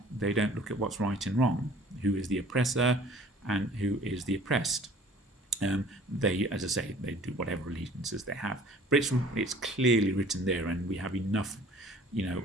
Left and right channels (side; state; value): both; normal; correlation 0.50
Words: look at what's right and wrong, who is the oppressor and who is the oppressed. They, as I say, they do whatever allegiances they have, but it's clearly written there, and we have enough,